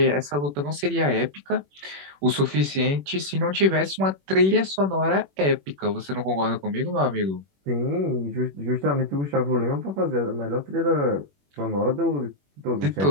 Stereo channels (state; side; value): late; left; 21 ms